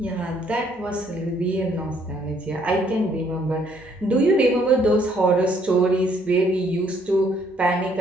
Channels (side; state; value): both; normal; correlation 0.66